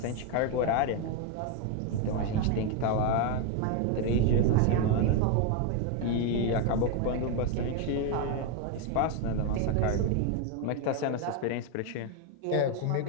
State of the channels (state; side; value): different; both; correlation 0.01